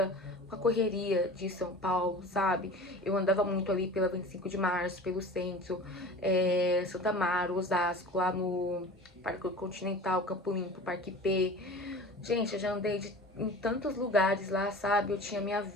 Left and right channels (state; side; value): normal; both; correlation 0.38